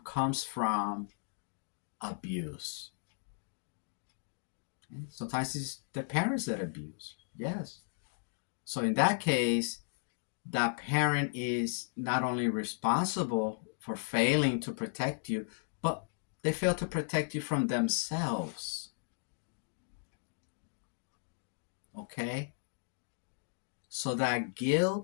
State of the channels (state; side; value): silent; right; digital silence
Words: comes from abuse. Sometimes it's the parents that abuse. Yes. So in that case, that parent is not only responsible for failing to protect you, but they fail to protect you from themselves. Okay? So that